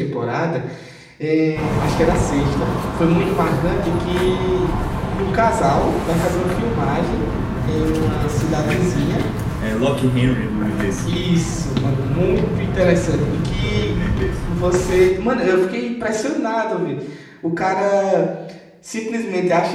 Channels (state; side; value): identical; both; correlation 1.00